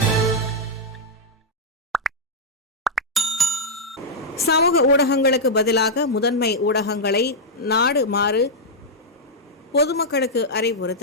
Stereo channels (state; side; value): normal; both; correlation -0.05